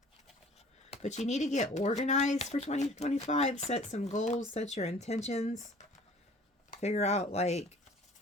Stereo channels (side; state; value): both; normal; correlation 0.50